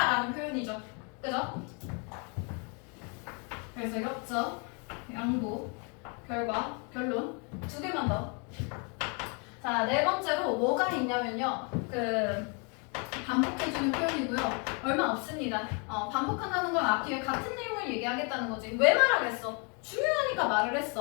표현이죠. 그죠? 그래서 역적, 양보, 결과, 결론 두 개만 더. 자, 네 번째로 뭐가 있냐면요. 반복해주는 표현이고요. 얼마 없습니다. 반복한다는 건 앞뒤에 같은 내용을 얘기하겠다는 거지. 왜 말하겠어? 중요하니까 말을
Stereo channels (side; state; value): right; quieter; 35.6 dB